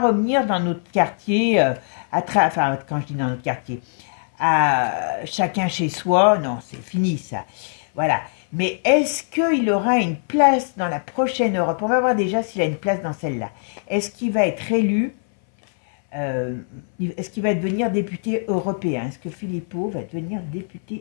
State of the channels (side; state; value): right; silent; 60 dB below the other